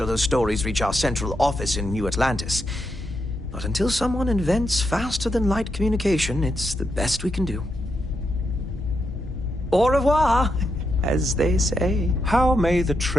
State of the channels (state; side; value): normal; both; correlation 0.83